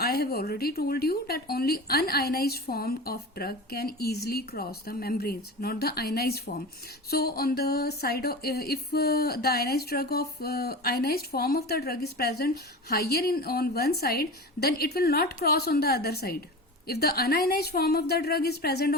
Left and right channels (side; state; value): both; normal; correlation 0.30